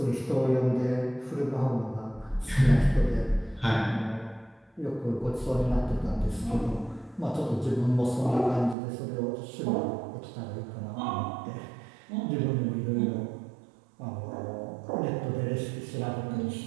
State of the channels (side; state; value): left; drops out; at 8.8 s